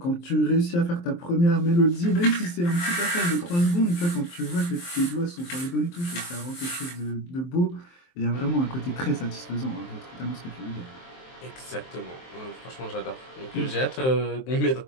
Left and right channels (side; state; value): right; late; 23 ms